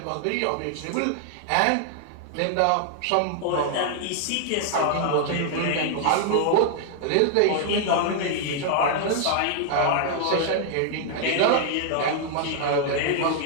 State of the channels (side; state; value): both; different; correlation 0.00